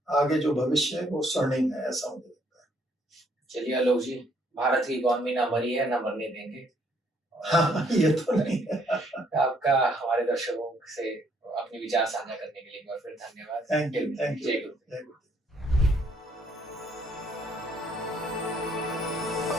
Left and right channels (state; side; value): normal; both; correlation 0.67